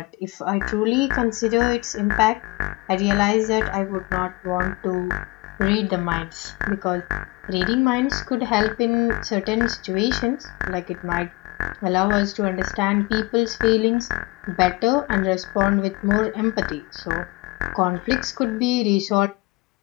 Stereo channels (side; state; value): right; quieter; 23.3 dB